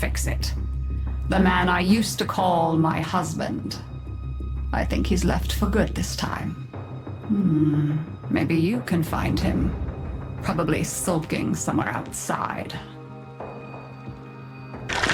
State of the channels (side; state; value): both; identical; correlation 1.00